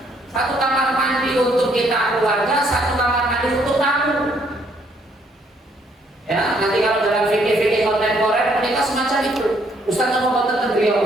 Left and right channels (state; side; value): normal; both; correlation 0.68